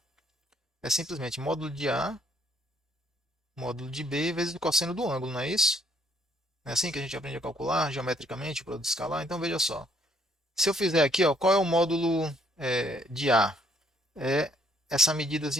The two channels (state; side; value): normal; both; correlation 0.67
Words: é simplesmente módulo de A, módulo de B, vezes o cosseno do ângulo, não é isso? É assim que a gente aprende a calcular geometricamente o produto escalar? Então veja só. Se eu fizer aqui, ó, qual é o módulo de A? É essa